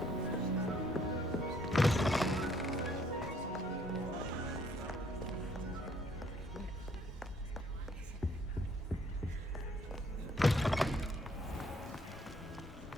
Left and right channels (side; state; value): both; normal; correlation 0.65